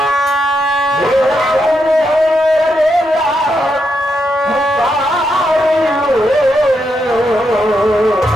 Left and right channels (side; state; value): both; normal; correlation 0.82